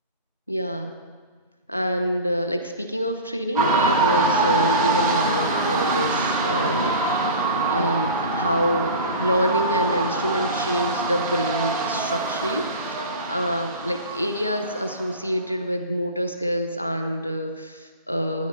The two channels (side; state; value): both; inverted; correlation -0.33